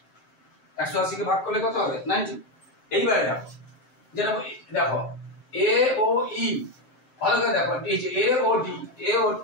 180 কে ভাগ করলে কত হবে? 90। এইবারে দেখো, যেটা দেখো এ ও ই, ভালো করে দেখো, এই যে এ ও ডি, এ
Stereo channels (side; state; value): right; late; 7.7 ms